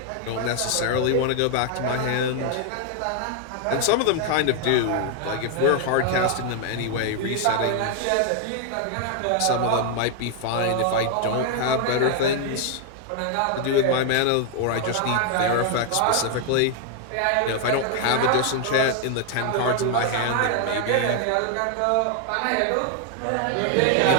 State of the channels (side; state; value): both; different; correlation 0.00